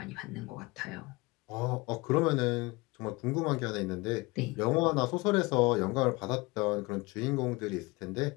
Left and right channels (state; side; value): quieter; right; 23.8 dB